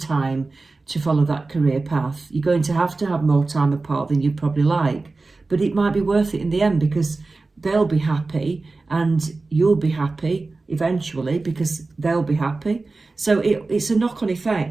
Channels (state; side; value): quieter; left; 3.6 dB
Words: to follow that career path. You're going to have more time apart than you'd probably like. But it might be worth it in the end because they'll be happy and you'll be happy eventually because they'll be happy. So it's a knock-on